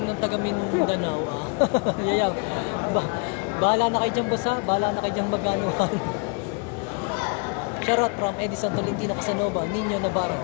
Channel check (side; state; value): right; quieter; 34.3 dB